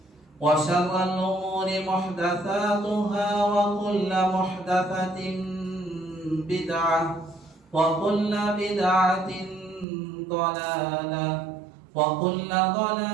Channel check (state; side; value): drops out; left; at 9.9 s